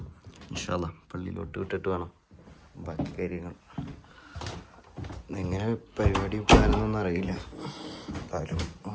ഇൻഷാ അല്ലാഹ് പള്ളിയിലോട്ട് വിട്ടിട്ട് വേണം ബാക്കി കാര്യങ്ങൾ. എങ്ങനെ പരിപാടി പോകാനൊന്നും അറിയില്ല. എന്തായാലും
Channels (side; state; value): both; identical; correlation 1.00